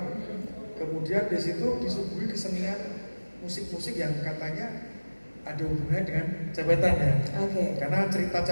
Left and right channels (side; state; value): both; inverted; correlation -1.00